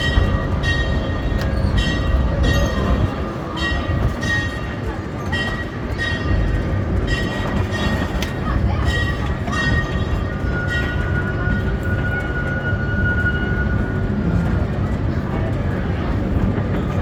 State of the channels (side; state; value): both; identical; correlation 1.00